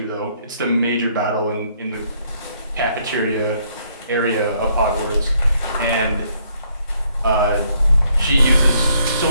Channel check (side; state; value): both; inverted; correlation -0.69